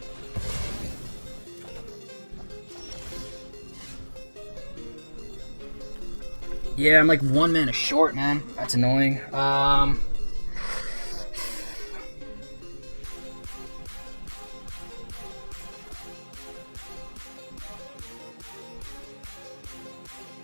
Yeah, I'm like 1 mana short, man. That's annoying. I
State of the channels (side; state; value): both; inverted; correlation -1.00